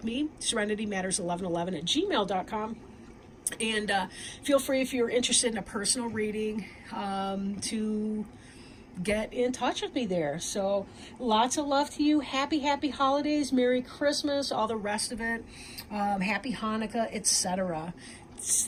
me, serenitymatters1111@gmail.com. And feel free, if you're interested in a personal reading, to get in touch with me there. So lots of love to you. Happy holidays, Merry Christmas, all the rest of it. Happy Hanukkah, etc.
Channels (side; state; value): both; identical; correlation 1.00